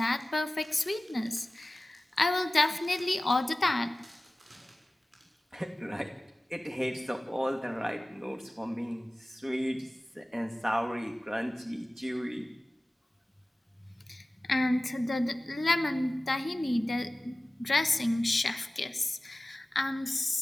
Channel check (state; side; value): normal; both; correlation 0.97